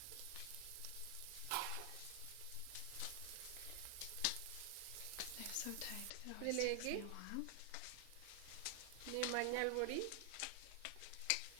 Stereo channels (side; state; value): both; different; correlation 0.00